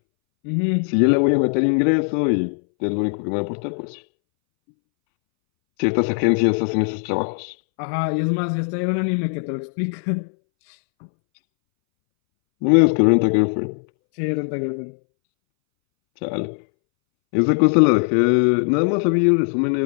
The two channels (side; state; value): right; silent; 64 dB below the other